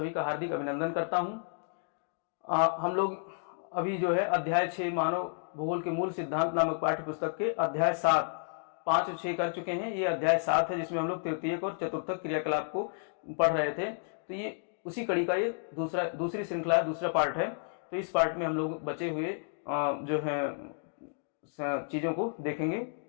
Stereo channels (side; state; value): right; silent; digital silence